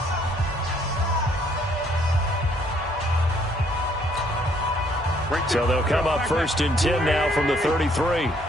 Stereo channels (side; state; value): both; normal; correlation 0.66